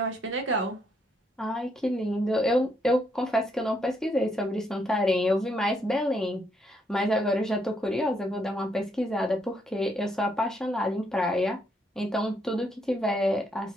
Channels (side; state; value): both; normal; correlation 0.74